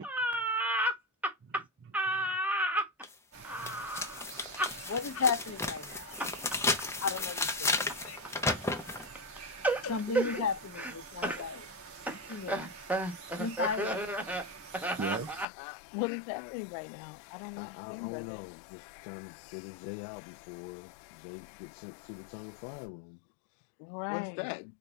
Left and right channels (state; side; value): drops out; right; at 15.5 s